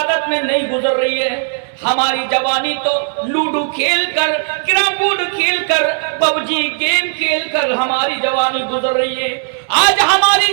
میں نہیں گزر رہی ہے، ہماری جوانی تو لوڈو کھیل کر، کیرم بورڈ کھیل کر، پب جی گیم کھیل کر ہماری جوانی گزر رہی ہے، آج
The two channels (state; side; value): silent; left; 60 dB below the other